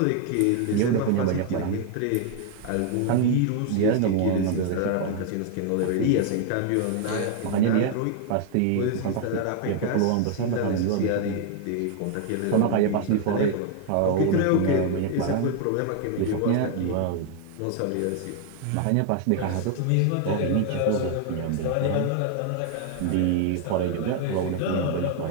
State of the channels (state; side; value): different; both; correlation 0.00